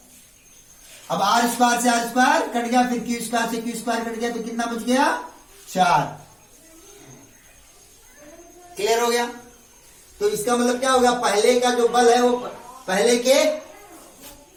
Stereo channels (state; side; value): identical; both; correlation 1.00